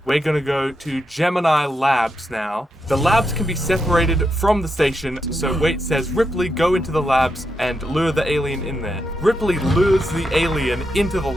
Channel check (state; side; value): normal; both; correlation 0.84